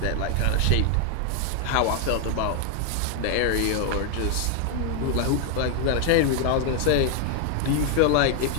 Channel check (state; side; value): different; both; correlation 0.00